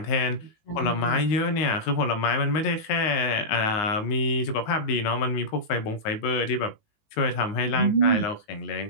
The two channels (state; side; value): late; right; 19 ms